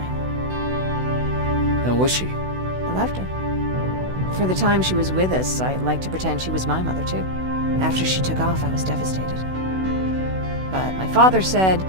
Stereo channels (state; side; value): late; left; 16 ms